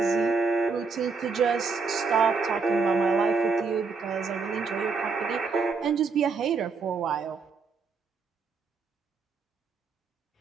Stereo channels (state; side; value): quieter; left; 4.7 dB